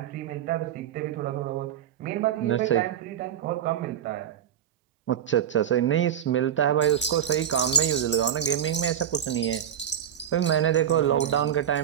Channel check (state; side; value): quieter; left; 9.6 dB